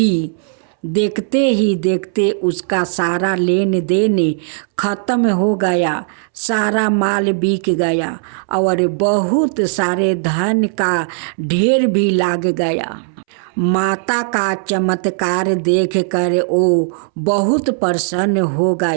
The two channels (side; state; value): left; silent; 68 dB below the other